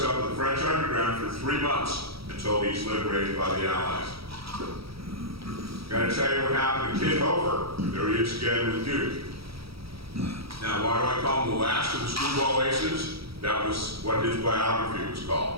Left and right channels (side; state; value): left; late; 0.76 ms